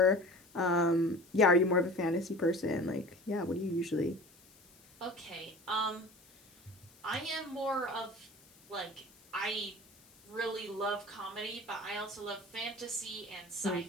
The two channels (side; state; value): left; noise; hiss, 26 dB below the sound